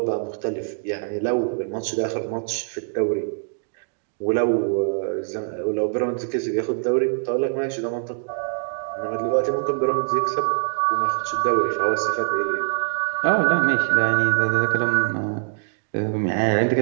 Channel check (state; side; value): silent; left; digital silence